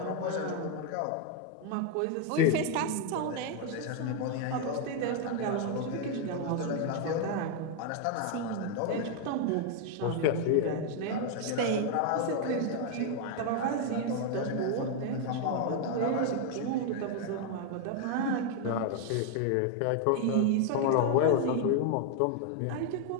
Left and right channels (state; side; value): different; both; correlation 0.01